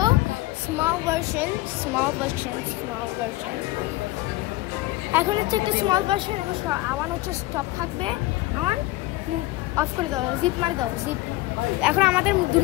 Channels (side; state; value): right; quieter; 18.9 dB